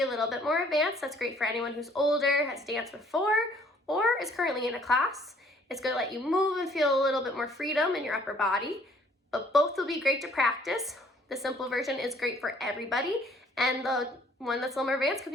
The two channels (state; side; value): normal; both; correlation 0.59